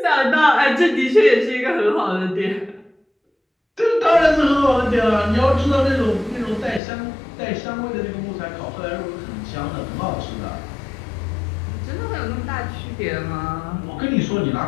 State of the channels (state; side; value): drops out; right; at 6.8 s